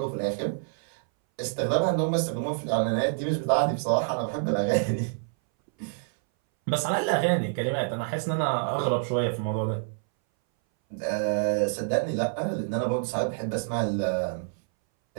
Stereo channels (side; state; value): left; silent; 60 dB below the other